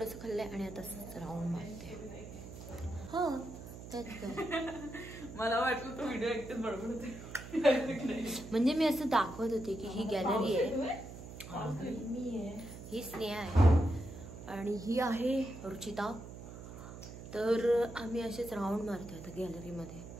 खाल्लं आहे आणि आता राऊंड मारते. हो त्यात काय मला वाटलं तो व्हिडिओ एकटेच बडबड होते. म्हणजे मी असं दाखवत होते की ही गॅलरी आहे, ही स्नेहा आहे आणि ही आहे रुचिता. तर आम्ही असेच राऊंड मारतोय आता गॅलरीमध्ये,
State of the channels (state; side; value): noise; right; hum, 12 dB below the sound